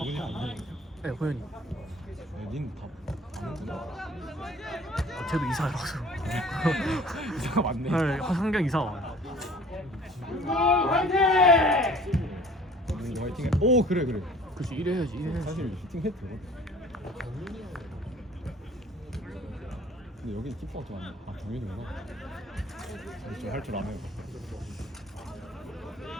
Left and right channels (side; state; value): both; normal; correlation 0.50